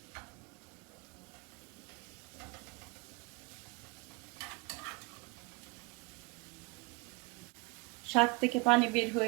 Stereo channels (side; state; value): left; quieter; 27.2 dB